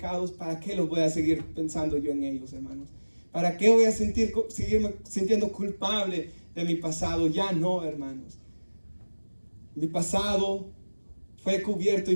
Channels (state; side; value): inverted; both; correlation -1.00